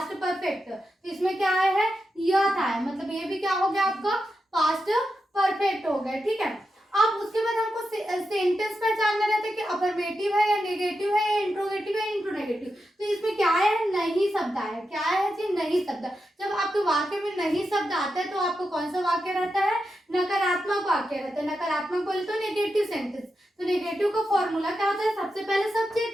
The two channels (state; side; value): normal; both; correlation 0.88